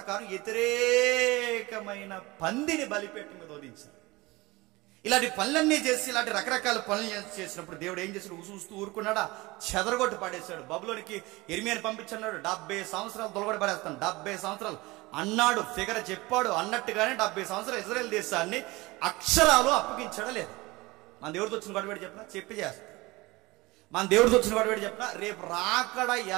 వ్యతిరేకమైన పందిని బలిపీఠం మీద వదిలించారు. ఇలాంటి పనులన్నీ చేసి ఇలాంటి రకరకాల పనులు చేసినప్పుడు దేవుడు ఏం చేశాడు? చూస్తూ ఊరుకున్నాడా? చెదరగొట్టి పడేశాడు. బబులోనికి ఇర్మియాని పంపించన్నాడు. 70 సంవత్సరాలు తొలగొట్టి పడేస్తాను. 70 సంవత్సరాలు అన్నాడు, ఫిగర్ చెప్పాడు. అన్నట్టుగానే 70 సంవత్సరాలు ఇజ్రాయెల్ దేశాన్ని అక్షరాలు అప్పగించడం లేదు. మన దేవుడితో వచ్చిన గొడవడి చెప్పినా చెప్పి చేస్తా. మన దేవుడితో వచ్చిన గొడవడి చెప్పినా రేపు రాకడ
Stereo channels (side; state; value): left; quieter; 21.9 dB